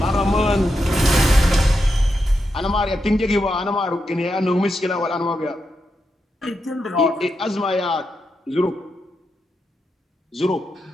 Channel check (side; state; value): both; normal; correlation 0.86